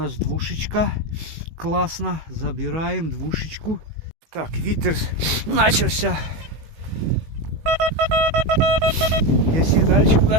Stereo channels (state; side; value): late; left; 18 ms